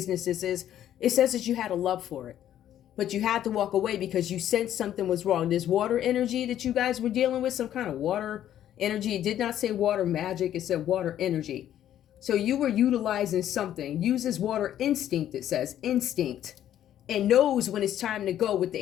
this is, it says that you had a love for it. But you had to walk away because you sensed something was wrong. There's water energy that you guys were dealing with, some kind of water energy. It did not say water magic. It said water energy. So you were utilizing something. Uses water instinct, it says. Instinct. And knows when it's time to go with the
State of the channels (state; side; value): quieter; right; 11.3 dB